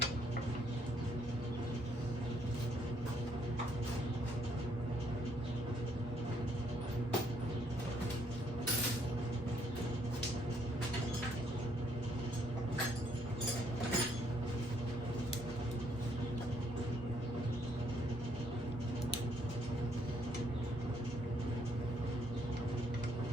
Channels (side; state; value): both; normal; correlation 0.70